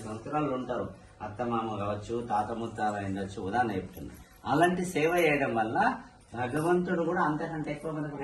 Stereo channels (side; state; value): both; identical; correlation 1.00